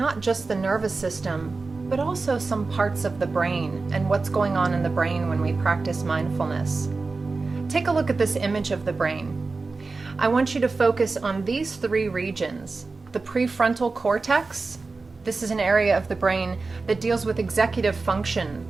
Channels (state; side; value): quieter; left; 3.9 dB